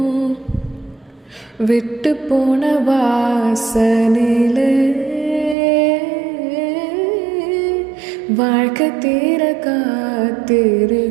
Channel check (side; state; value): left; drops out; at 5.6 s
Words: விட்டு போன வாசனிலே வாழ்க்கை தீர